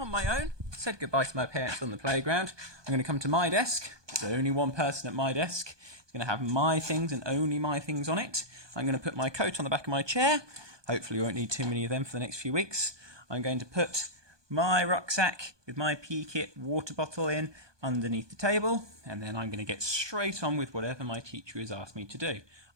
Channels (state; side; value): late; left; 1.2 ms